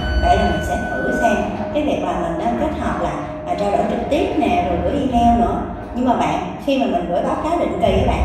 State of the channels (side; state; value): both; identical; correlation 1.00